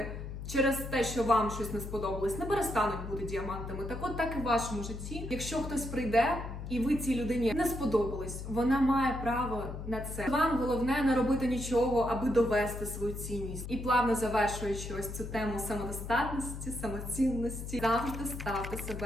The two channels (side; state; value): left; noise; hum, 8 dB below the sound